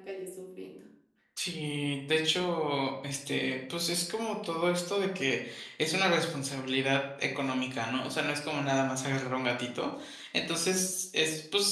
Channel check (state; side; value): identical; both; correlation 1.00